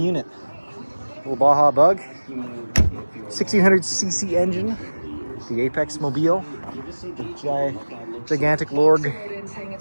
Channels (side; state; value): both; inverted; correlation -1.00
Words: Little Baja Bug, 1600cc engine, the Apex Mobile, the gigantic Lorg